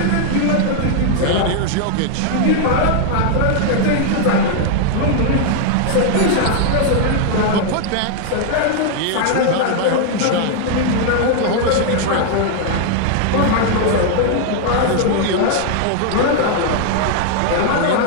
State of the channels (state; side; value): different; both; correlation 0.00